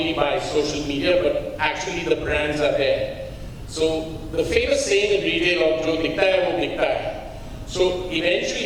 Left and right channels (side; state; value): both; identical; correlation 1.00